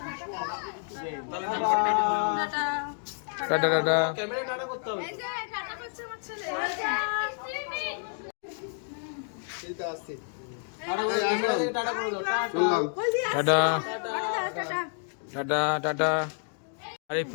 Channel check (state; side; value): silent; right; 58 dB below the other